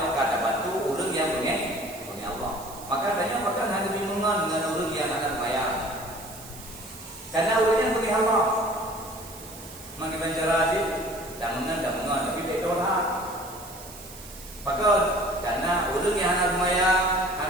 kata bantu urut yang bagi Allah. Maka tanya maka hanya bingungan dengan urut yang akan bayar. Karena urutnya bagi Allah. Mengenai cara sih. Dan mengenal tapi tak tolak. Maka karena urang yang anak rumaya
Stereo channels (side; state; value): right; noise; hiss, 16 dB below the sound